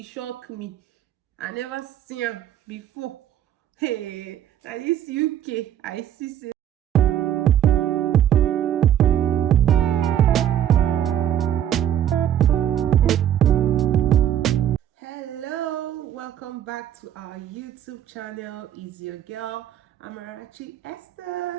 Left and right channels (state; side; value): quieter; left; 10.6 dB